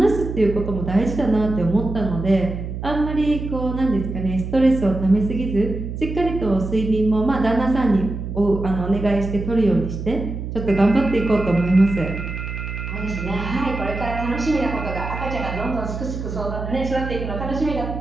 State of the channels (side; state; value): right; noise; hum, 6 dB below the sound